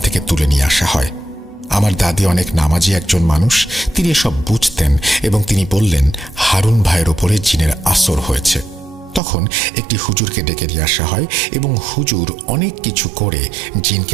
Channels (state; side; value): drops out; left; at 9.2 s